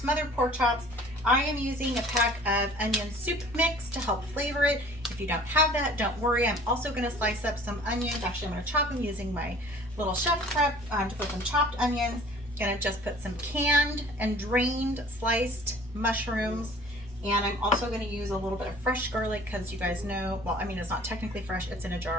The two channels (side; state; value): both; normal; correlation 0.49